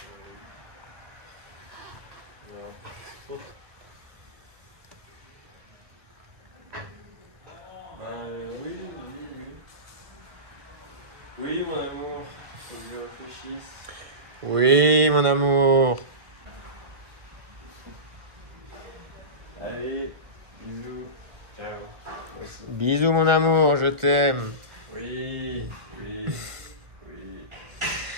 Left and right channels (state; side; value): late; left; 1.7 ms